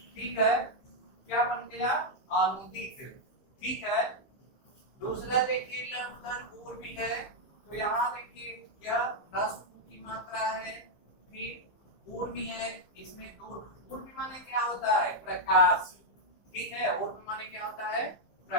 ठीक है, क्या बन गया? अनुदित। ठीक है, दूसरा देखिए लघुधन ऊर भी है। तो यहाँ देखिए यह ह्रस्व की मात्रा है, फिर ऊर भी है, इसमें दूर। ऊर भी माने क्या होता है? प्रकाश। ठीक है, ऊर भी माने क्या होता है?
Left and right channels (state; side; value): late; right; 15 ms